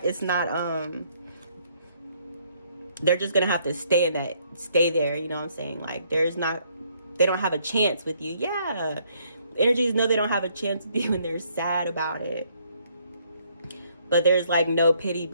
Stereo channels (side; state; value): both; inverted; correlation -0.68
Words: they're just gonna have to stay there, you know what I'm saying? Like they don't have a chance with you. Yeah. Energies know they don't have a chance with you and they're sad about it. But there's like no pity